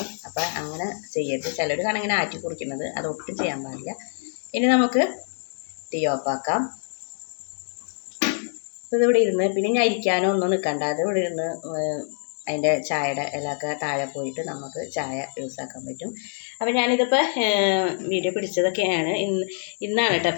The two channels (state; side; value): silent; right; digital silence